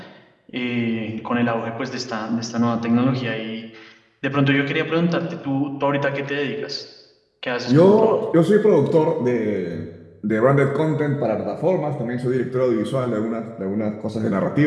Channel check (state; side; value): identical; both; correlation 1.00